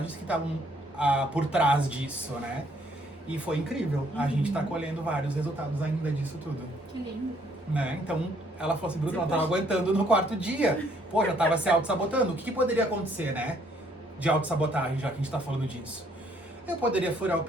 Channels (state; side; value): normal; both; correlation 0.66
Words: que estavam por trás disso, né? E foi incrível. A gente tá colhendo vários resultados ainda disso tudo. Que lindo. Né? Então, ela falou assim, Bruno, ela tava aguentando no 4º dia. Pô, já tava se auto-sabotando. O que poderia acontecer, né? De auto-sabotagem, já que a gente tá falando disso. Eu poderia furar o